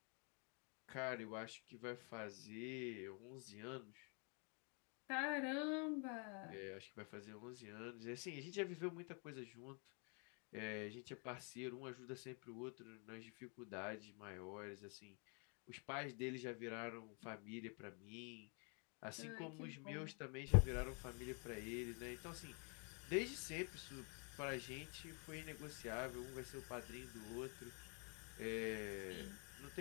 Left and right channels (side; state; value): right; quieter; 37.0 dB